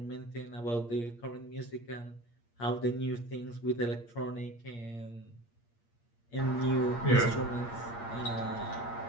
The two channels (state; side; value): late; right; 8.6 ms